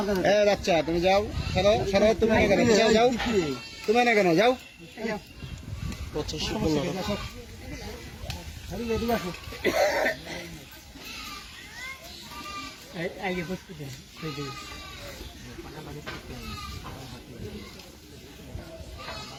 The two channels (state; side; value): identical; both; correlation 1.00